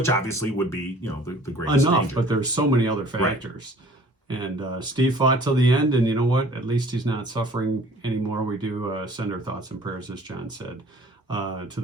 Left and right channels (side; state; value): both; normal; correlation 0.51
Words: obviously would be, you know, the greatest danger. But there's so many other factors. Right. And Steve fought till the end, and you know what? At least he's not suffering anymore. We do send our thoughts and prayers, as John said, to